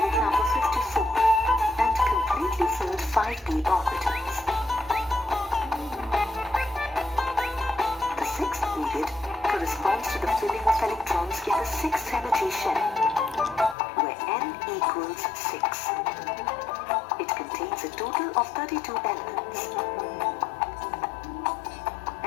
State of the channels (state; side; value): drops out; right; at 13.8 s